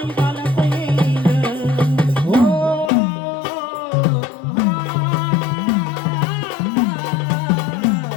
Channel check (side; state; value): right; drops out; at 2.9 s